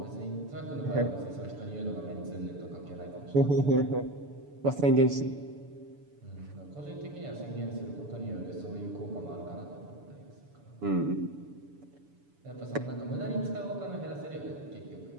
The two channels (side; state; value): left; late; 7.0 ms